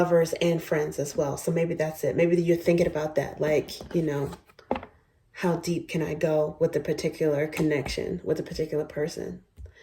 and friends as well. So maybe that's it. Maybe you're thinking about that, like, you know, how deep can I go with a particular connection with a particular person?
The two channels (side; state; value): both; identical; correlation 1.00